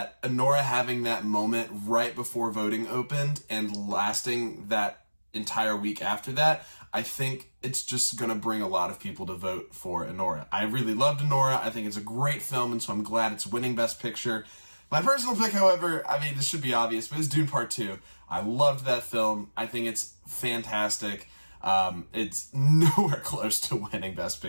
Anora having that moment right before voting opened and lasting that entire week after that, I think it's just going to bring a lot of people to vote for Anora. I really loved Anora. I think it's a great film, and so I'm glad it's winning Best Picture. My personal pick, however, I mean, this should be obvious, but it's Dune Part 2. I loved that film. I think it's fantastic. It's nowhere close to winning Best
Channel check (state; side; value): inverted; both; correlation -1.00